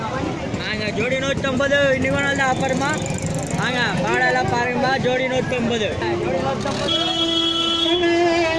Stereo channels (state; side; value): identical; both; correlation 1.00